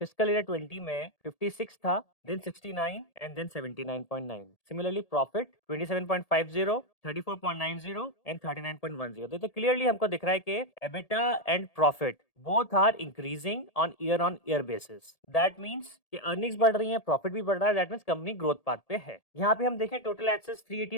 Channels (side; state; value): right; late; 1.8 ms